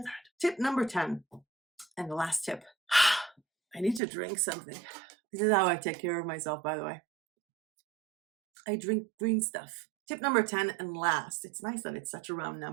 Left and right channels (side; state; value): left; drops out; at 4.0 s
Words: that? Tip number 10, and the last tip. I need to drink something. This is how I take care of myself, by the way. I drink green stuff. Tip number 10 and last. It's nice that it's such a round